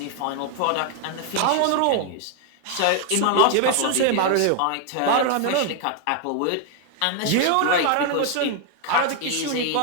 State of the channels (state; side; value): different; both; correlation 0.00